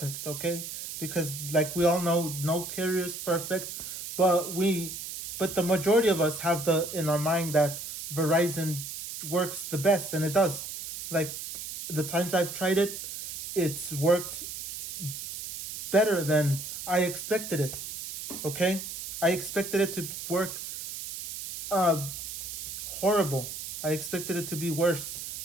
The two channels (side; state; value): right; noise; hiss, 8 dB below the sound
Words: okay? Because like we all know, no carrier is perfect, but the majority of us have the in our mind that Verizon works the best, and it does. Like the times I've tried it, it's worked better than I expected it. Okay? I expected it to work horrible. I expected it to be worse